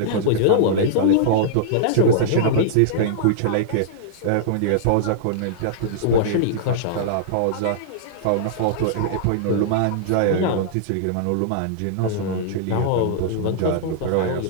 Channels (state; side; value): different; both; correlation -0.02